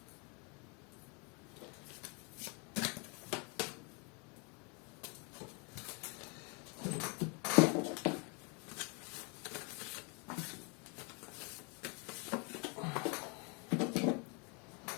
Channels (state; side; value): quieter; right; 33.8 dB